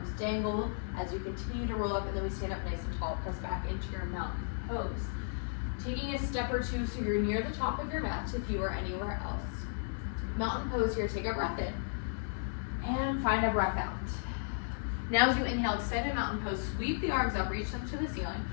dangle as you continue to roll up, and then we stand up nice and tall, press back into your mountain pose. Taking a step or two so you're near the top of your mat if you are anywhere else. Mountain pose here, take a breath in and find a breath out. Now as you inhale, extend a mountain pose, sweep the arms up, reach them to the ceiling.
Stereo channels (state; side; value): silent; right; 55 dB below the other